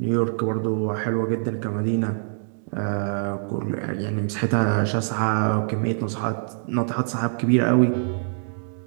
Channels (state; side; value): silent; left; digital silence